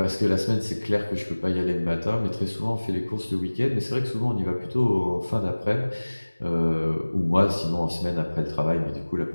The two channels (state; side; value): inverted; both; correlation -1.00